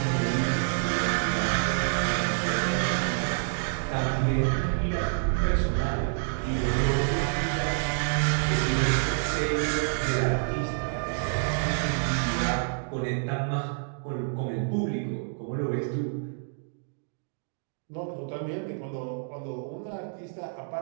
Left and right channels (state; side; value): silent; left; digital silence